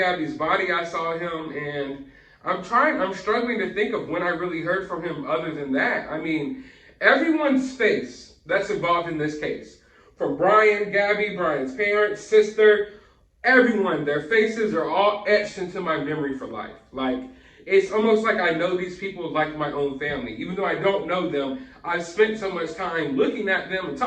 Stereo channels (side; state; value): both; identical; correlation 1.00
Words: body, I saw him, and I'm struggling to think of when I really heard from him other than that. I mean, everyone's face that's involved in this case, from Brian, Gabby, Brian's parents, sister, everyone, their faces are all etched into my memory for life. Like, it's almost like I know these people like my own family. Even though I don't know them, I've spent so much time looking at them and